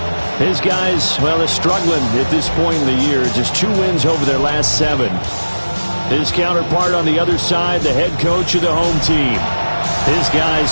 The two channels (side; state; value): both; inverted; correlation -1.00